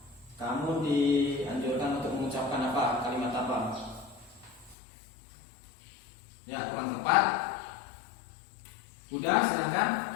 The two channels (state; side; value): drops out; right; at 4.8 s